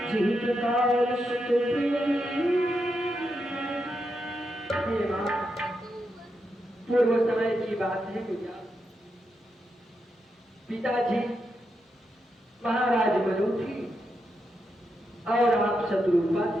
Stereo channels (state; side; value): normal; both; correlation 0.84